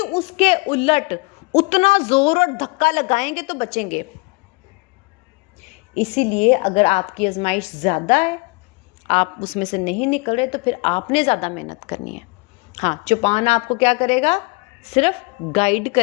اس کے الٹ اتنا زور اور دھکا لگائیں گے تو بچیں گے. اسی لیے اگر آپ کی آزمائش زیادہ ہے، آپ اس میں سے نہیں نکل رہے، تو پھر آپ نے زیادہ محنت کرنی ہے. ہاں، چوپان آپ کو کیا کرے گا؟ صرف گائیڈ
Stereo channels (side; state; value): right; quieter; 28.0 dB